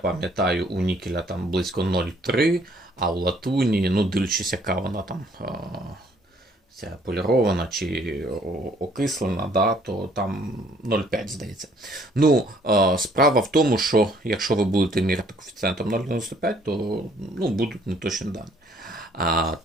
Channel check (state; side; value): normal; both; correlation 0.61